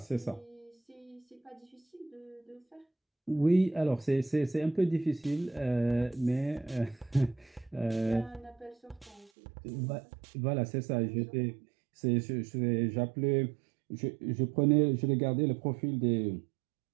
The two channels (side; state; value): left; drops out; at 9.3 s